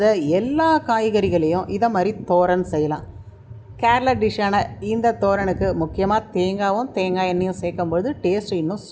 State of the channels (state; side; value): identical; both; correlation 1.00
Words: எல்லா காய்கறிகளையும் இதை மாதிரி தோரன் செய்யலாம். கேரளா டிஷ்ஷான இந்த தோரனுக்கு முக்கியமாக தேங்காயும் தேங்காய் எண்ணெயும் சேர்க்கும்பொழுது டேஸ்ட் இன்னும்